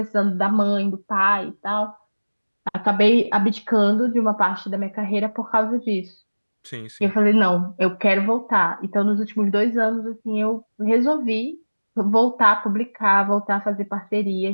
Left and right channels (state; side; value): inverted; both; correlation -1.00